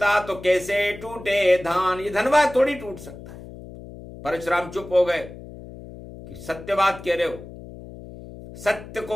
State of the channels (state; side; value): noise; left; hum, 15 dB below the sound